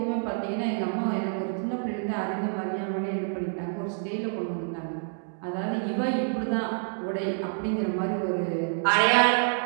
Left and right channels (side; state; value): left; silent; digital silence